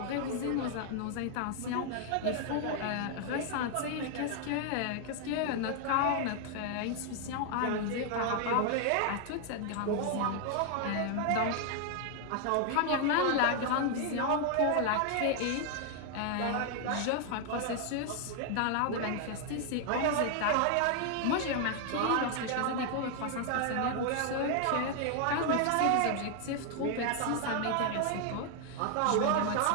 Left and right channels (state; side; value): different; both; correlation 0.00